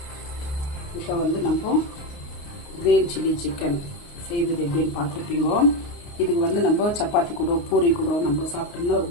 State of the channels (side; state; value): right; late; 29 ms